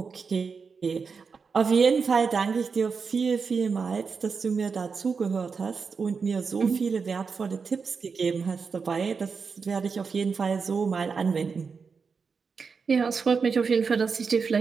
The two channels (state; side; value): quieter; left; 5.3 dB